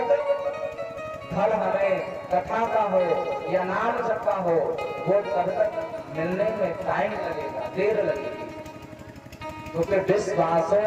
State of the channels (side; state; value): both; identical; correlation 1.00